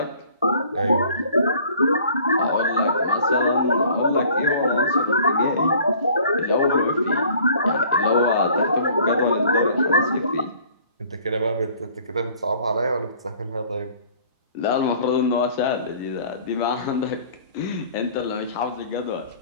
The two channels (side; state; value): both; inverted; correlation -0.53